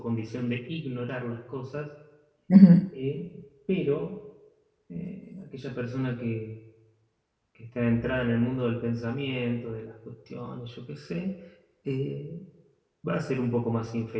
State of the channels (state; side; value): identical; both; correlation 1.00